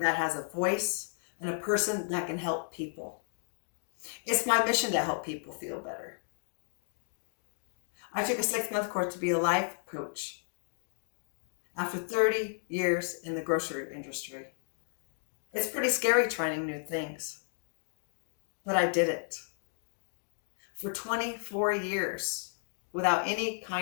has a voice, and a person that can help people. It's my mission to help people feel better. I took a 6-month course to be a life coach after 30 years in the grocery industry. It's pretty scary trying new things, but I did it. For 24 years, without any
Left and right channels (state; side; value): silent; right; digital silence